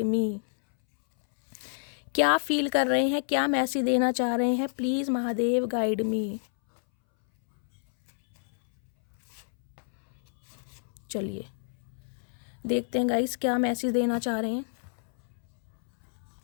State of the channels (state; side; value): silent; right; 59 dB below the other